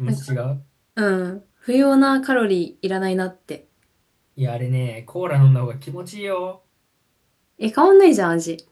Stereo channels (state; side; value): identical; both; correlation 1.00